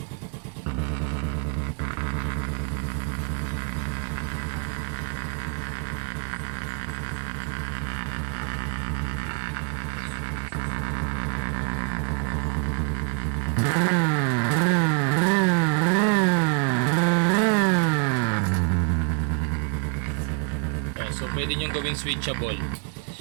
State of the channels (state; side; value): quieter; left; 37.0 dB